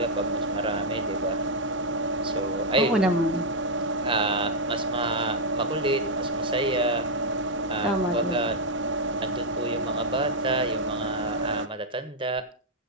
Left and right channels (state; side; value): normal; both; correlation -0.03